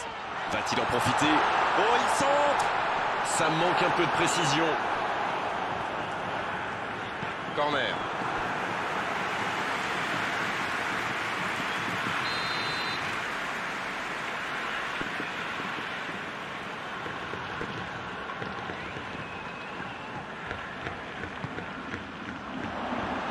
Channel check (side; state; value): both; identical; correlation 1.00